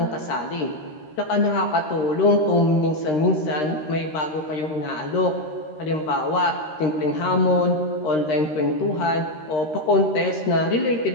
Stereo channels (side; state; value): right; late; 13 ms